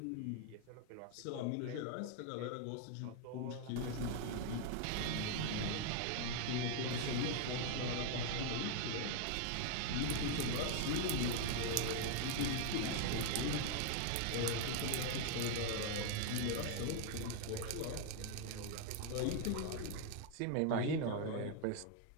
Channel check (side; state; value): both; different; correlation 0.00